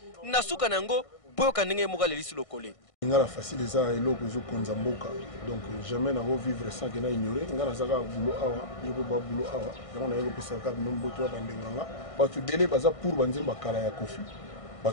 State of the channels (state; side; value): late; right; 1.6 ms